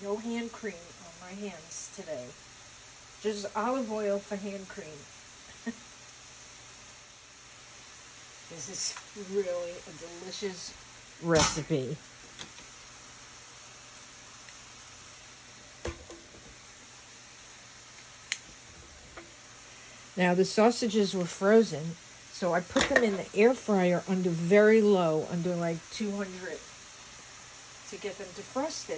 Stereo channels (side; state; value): both; identical; correlation 1.00